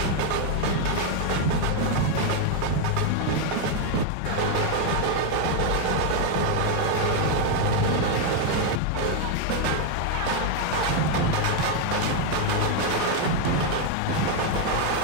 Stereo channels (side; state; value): both; different; correlation 0.01